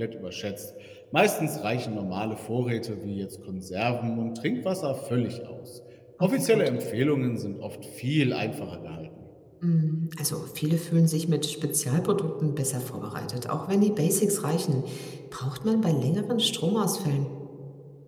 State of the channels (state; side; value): identical; both; correlation 1.00